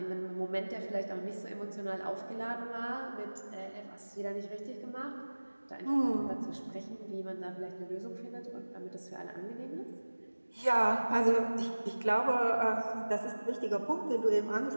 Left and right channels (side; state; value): both; inverted; correlation -1.00